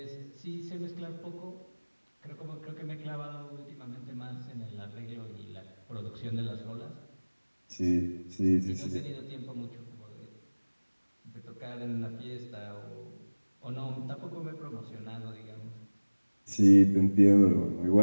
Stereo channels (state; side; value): inverted; both; correlation -1.00